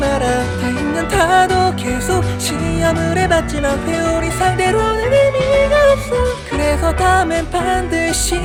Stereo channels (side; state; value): both; identical; correlation 1.00